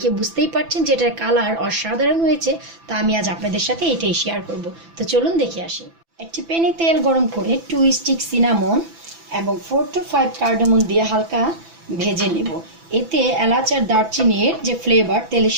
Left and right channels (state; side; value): late; left; 6.0 ms